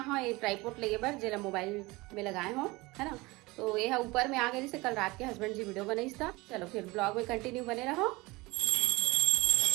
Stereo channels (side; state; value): left; quieter; 22.5 dB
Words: ट्राईपोर्ट लेगे बर जिला मोबाइल में लगाए हो है ना। तो यह ऊपर में आ गई से कल रात के हस्बैंड जी वीडियो बनाई था। चलो फिर ब्लॉग में कंटिन्यू बने रहो।